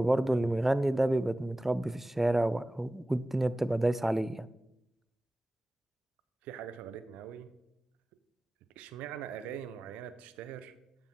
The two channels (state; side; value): normal; both; correlation 0.96